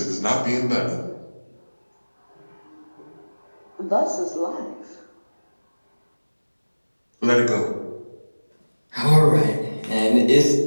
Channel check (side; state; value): both; inverted; correlation -1.00